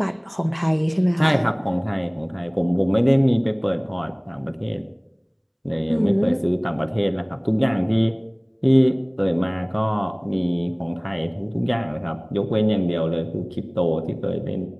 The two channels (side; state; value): both; identical; correlation 1.00